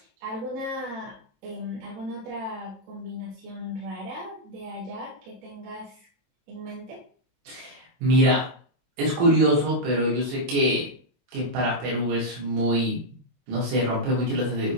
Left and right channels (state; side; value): late; left; 22 ms